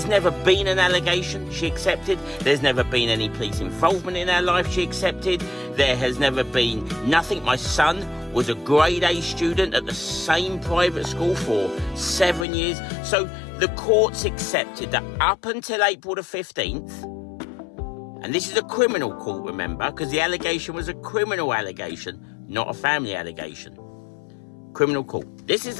never been an allegation, she accepted. There's never been any police involvement in our life, she accepted. There has never been nothing. My son was a grade A student at the same private school for 7 years. So the courts accepted that up until April the 15th, and this is a criminal court, remember, because the allegation was a criminal allegation, not a family allegation. Criminal court. This is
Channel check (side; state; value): right; drops out; at 12.5 s